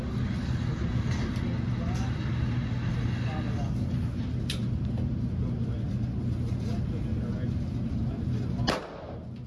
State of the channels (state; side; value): identical; both; correlation 1.00